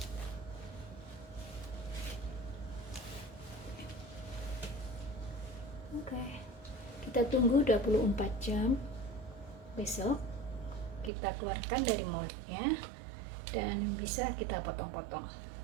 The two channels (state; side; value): drops out; left; at 11.1 s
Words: Oke, kita tunggu 24 jam. Besok kita keluarkan dari moldnya dan bisa kita potong-potong.